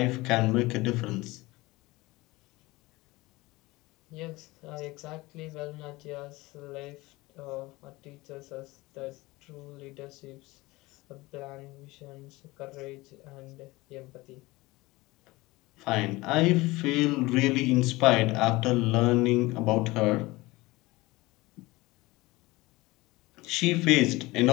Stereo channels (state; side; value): quieter; right; 21.0 dB